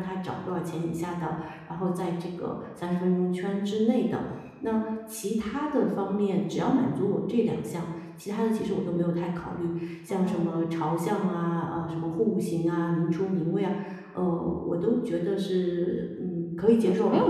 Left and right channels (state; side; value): identical; both; correlation 1.00